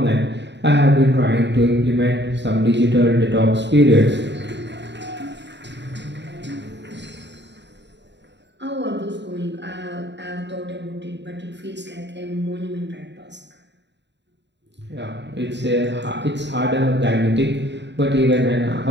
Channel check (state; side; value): late; left; 0.52 ms